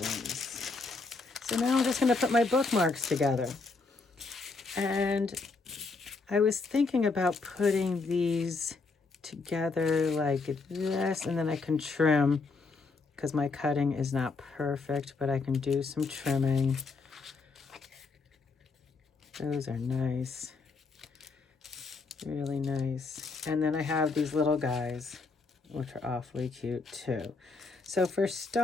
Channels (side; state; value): right; quieter; 4.1 dB